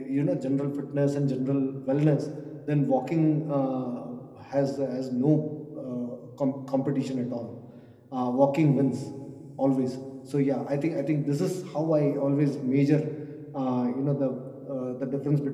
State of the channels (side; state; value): both; identical; correlation 1.00